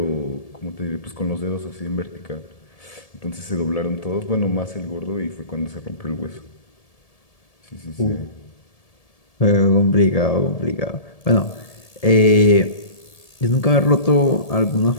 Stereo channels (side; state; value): right; late; 1.7 ms